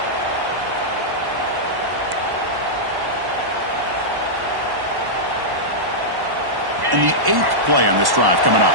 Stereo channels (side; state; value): left; late; 1.1 ms